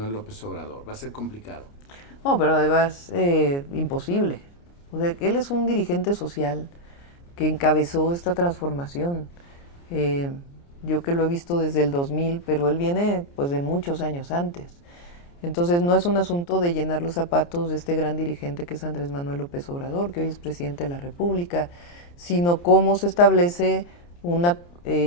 López Obrador? ¿Va a ser complicado? No, pero además imposible. O sea, él es un dirigente social que encabezó esta transformación. Yo que lo he visto desde el 2000, pero él viene pues de muchos años antes. Entonces no es un asunto de llenar los zapatos de este gran dirigente que es Andrés Manuel López Obrador, que hoy es presidente de la República, sino cómo se establece una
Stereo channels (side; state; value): right; late; 29 ms